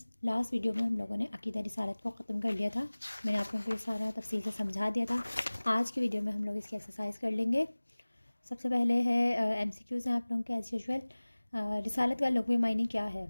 لاسٹ ویڈیو میں ہم لوگوں نے عقیدہ رسالت کو ختم کر لیا تھا۔ میں نے آپ لوگوں کو یہ سارا تفصیل سے سمجھا دیا تھا۔ آج کی ویڈیو میں ہم لوگ اس کی ایکسرسائز کر لیں گے۔ سب سے پہلے ہے ایم سی کیوز ہیں آپ لوگوں کے ایز یوزول۔ رسالت کا لغوی معنی کیا ہے؟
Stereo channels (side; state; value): both; inverted; correlation -1.00